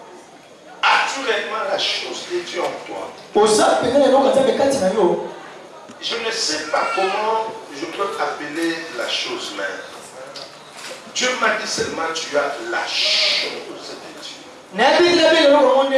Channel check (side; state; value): both; identical; correlation 1.00